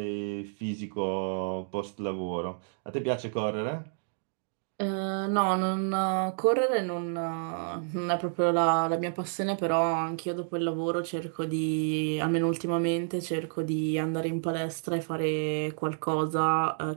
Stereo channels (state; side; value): silent; left; digital silence